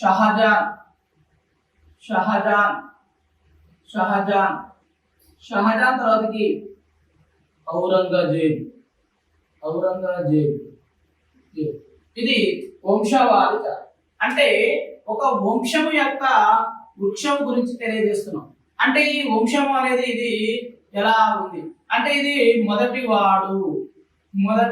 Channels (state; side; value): identical; both; correlation 1.00